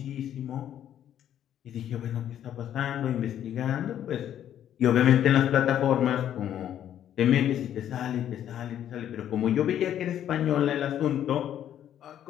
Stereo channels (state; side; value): quieter; right; 10.6 dB